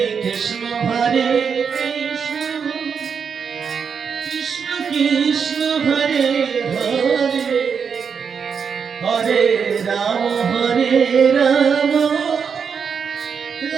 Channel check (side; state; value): left; quieter; 6.4 dB